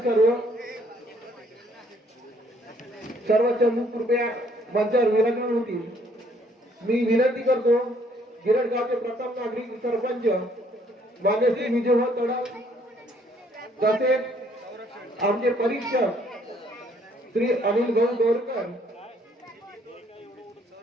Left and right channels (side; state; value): both; normal; correlation 0.64